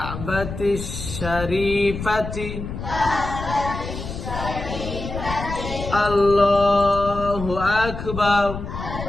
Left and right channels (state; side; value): noise; left; rumble, 7 dB below the sound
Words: শরীফাতি আল্লাহু আকবার।